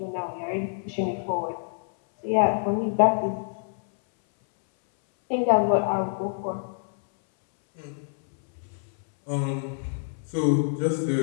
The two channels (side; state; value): right; silent; 61 dB below the other